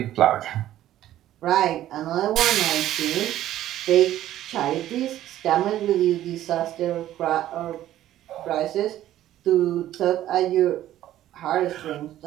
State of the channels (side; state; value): left; quieter; 13.1 dB